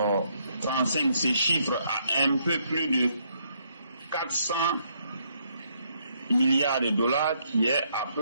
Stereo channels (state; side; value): inverted; both; correlation -0.72